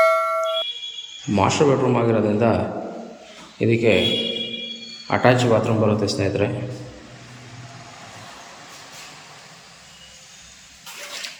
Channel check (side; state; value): both; identical; correlation 1.00